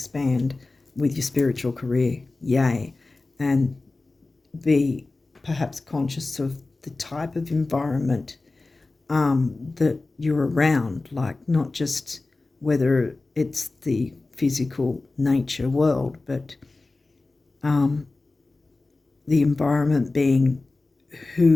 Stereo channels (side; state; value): right; quieter; 3.3 dB